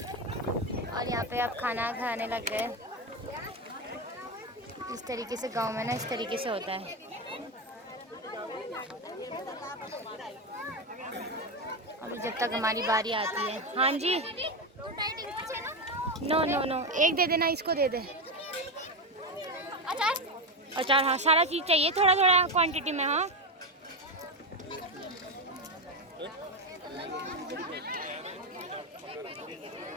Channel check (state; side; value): normal; both; correlation 0.13